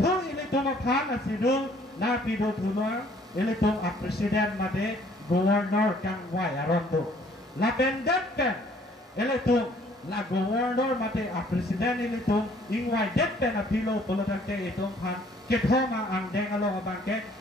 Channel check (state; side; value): normal; both; correlation 0.60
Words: elitum aphan asidung na pido tulua elitum a presiden made governor kangwai arondo. Lapendet pen elitum la governor mate a presiden ini tu ingwai det pen a pilo polotan ke itu pan ke thoma ang deng alo abang ke